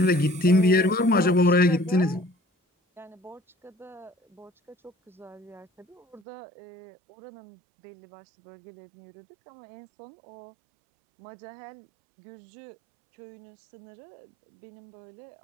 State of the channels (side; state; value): left; drops out; at 6.2 s